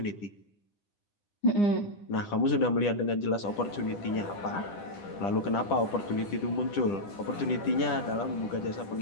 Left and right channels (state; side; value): late; right; 10 ms